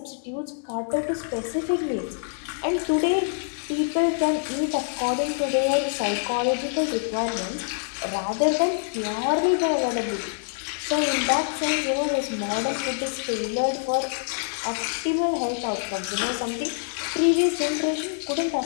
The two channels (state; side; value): silent; right; digital silence